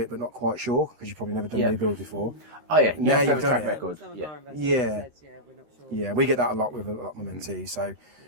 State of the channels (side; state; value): left; late; 13 ms